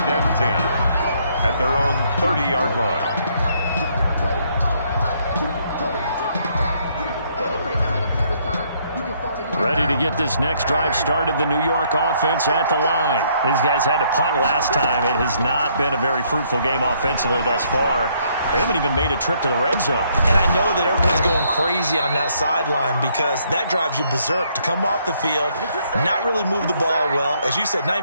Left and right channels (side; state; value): both; inverted; correlation -0.69